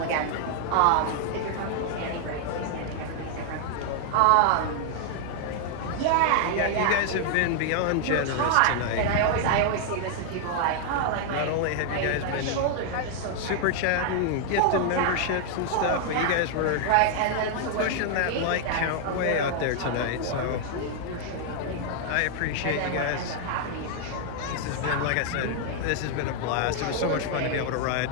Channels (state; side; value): different; both; correlation 0.00